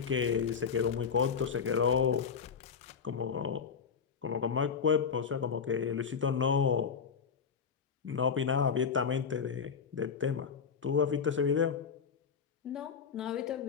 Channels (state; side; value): quieter; right; 6.4 dB